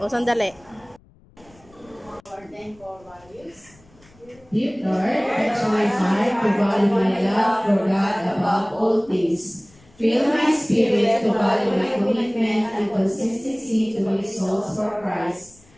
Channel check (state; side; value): noise; left; rumble, 28 dB below the sound